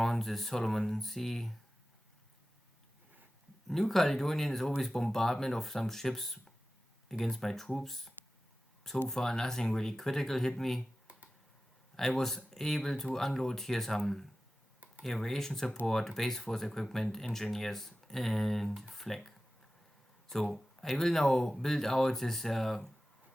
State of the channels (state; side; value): normal; both; correlation 0.95